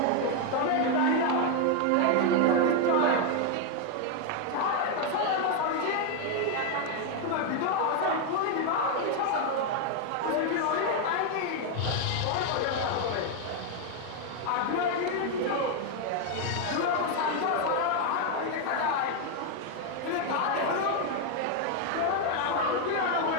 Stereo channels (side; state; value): both; different; correlation 0.01